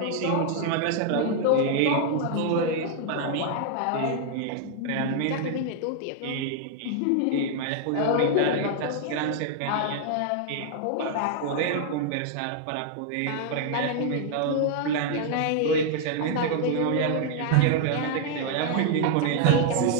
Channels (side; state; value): both; different; correlation 0.00